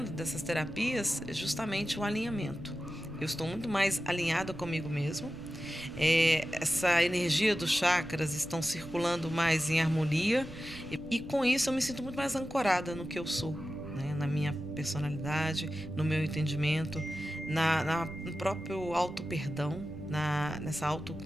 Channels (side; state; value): right; noise; rumble, 16 dB below the sound